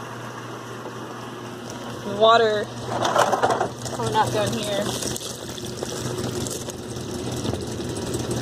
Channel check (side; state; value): both; identical; correlation 1.00